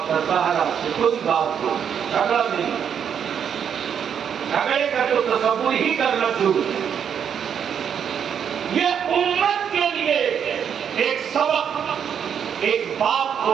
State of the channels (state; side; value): quieter; left; 8.0 dB